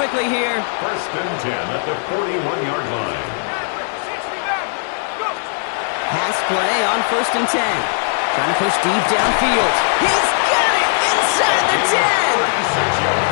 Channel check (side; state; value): right; silent; 64 dB below the other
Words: here. 1st and 10 at the 41-yard line. Pass play on 1st and 10. Trying to push deep downfield. He's got it inside the 10.